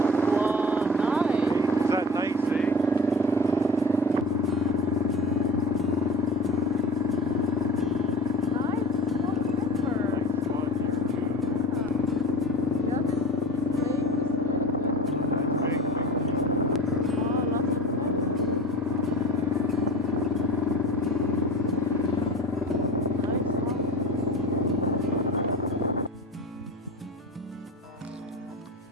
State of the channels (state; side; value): normal; both; correlation 0.35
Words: Wow, nice. Is that nice, eh?